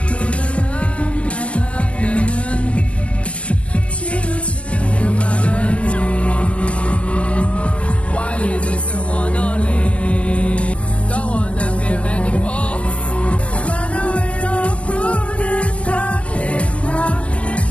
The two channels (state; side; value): late; right; 0.062 ms